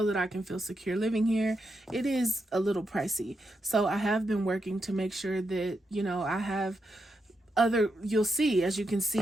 that I can feel secure living here. It is a little pricey, so I have been working to make sure that I have you'll see, as you can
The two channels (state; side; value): normal; both; correlation 0.84